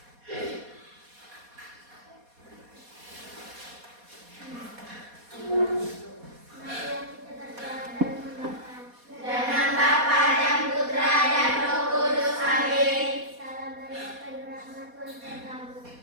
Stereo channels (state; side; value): late; left; 4.2 ms